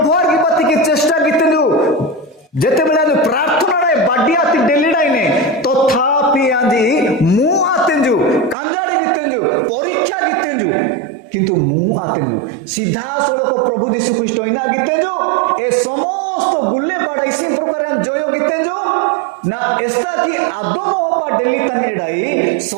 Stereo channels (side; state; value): left; drops out; at 8.6 s